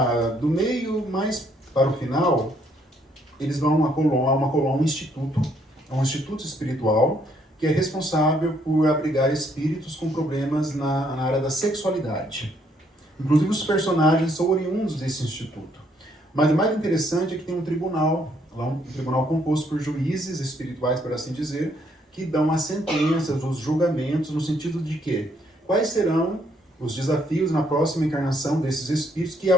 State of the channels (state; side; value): normal; both; correlation 0.69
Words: do meio mais para o final, eles vão a um instituto, um instituto espiritual, que é responsável por abrigar espíritos com problemas na área da sexualidade. Inclusive os personagens são oriundos desse instituto. Mas o mais interessante é que tem um tribunal, lá um tribunal composto por juízes espirituais, por assim dizer, que dão as sentenças, os julgamentos, no sentido de que quais serão os desafios na próxima encarnação desses espíritos que